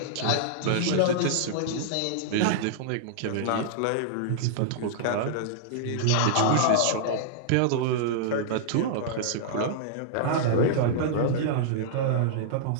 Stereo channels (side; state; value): both; different; correlation -0.02